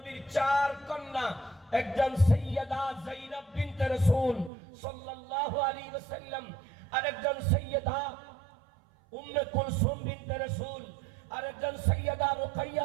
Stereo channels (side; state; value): left; drops out; at 4.5 s